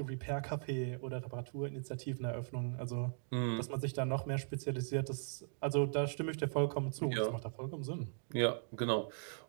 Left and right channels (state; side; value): silent; left; digital silence